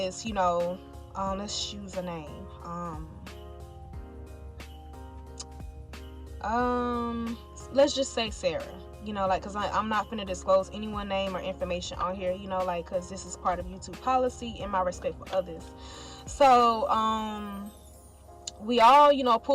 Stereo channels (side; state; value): both; identical; correlation 1.00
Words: let's choose a name. Let's just say Sarah. Because I'm not finna disclose anyone's name or information on here, because this is part of YouTube policy and my respect for others. So we all